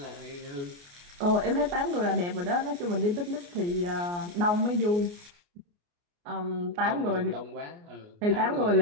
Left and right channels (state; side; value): late; left; 29 ms